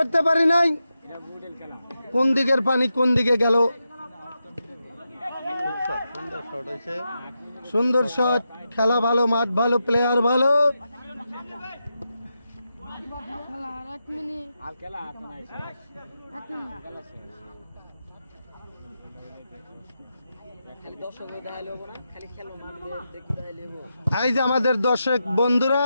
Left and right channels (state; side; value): inverted; both; correlation -0.87